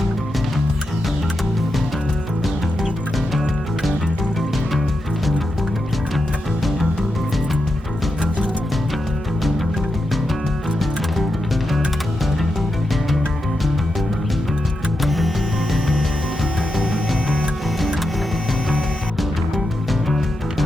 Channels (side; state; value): both; normal; correlation 0.87